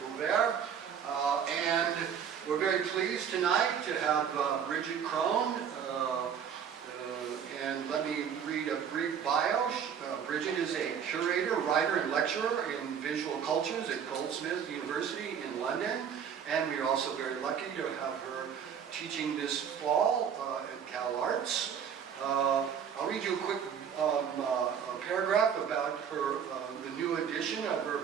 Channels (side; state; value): left; quieter; 7.8 dB